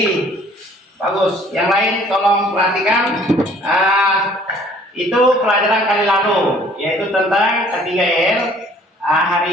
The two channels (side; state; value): both; normal; correlation 0.56